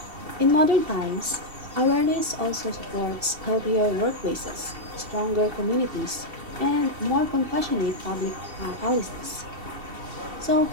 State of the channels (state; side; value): late; left; 2.7 ms